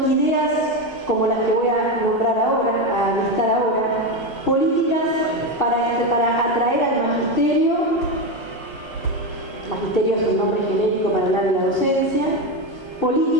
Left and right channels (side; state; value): left; late; 1.3 ms